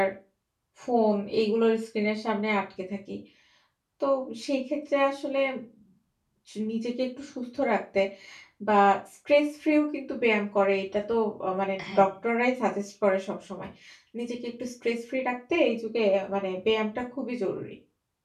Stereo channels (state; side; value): identical; both; correlation 1.00